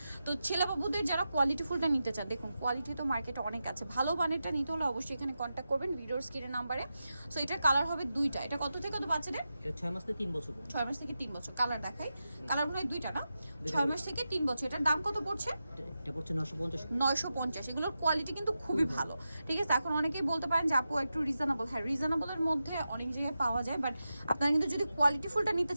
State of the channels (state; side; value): inverted; both; correlation -0.90